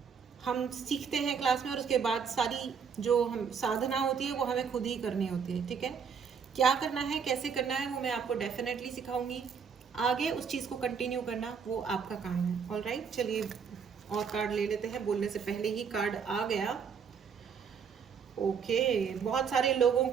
हम सीखते हैं क्लास में और उसके बाद सारी जो हम साधना होती है वो हमें खुद ही करनी होती है, ठीक है। क्या करना है, कैसे करना है, वो मैं आपको डेफिनेटली सिखाऊंगी। आगे उस चीज़ को कंटिन्यू करना वो आपका काम है। ऑल राइट, चलिए और कार्ड ले लेते हैं। बोलने से पहले ही कार्ड आ गया, ओके। बहुत सारे लोगों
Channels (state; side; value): quieter; left; 6.5 dB